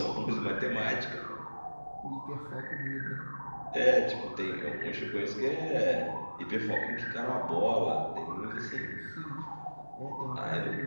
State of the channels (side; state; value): both; inverted; correlation -1.00